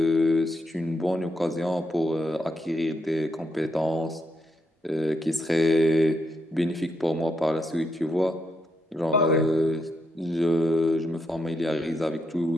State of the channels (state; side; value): normal; both; correlation 0.80